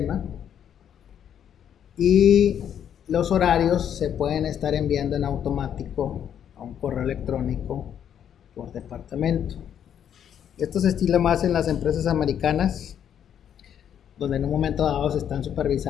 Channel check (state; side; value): quieter; right; 9.2 dB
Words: y los horarios se pueden estar enviando en automático a un correo electrónico por departamento. Esto se estila más en las empresas americanas, donde en un momento dado se están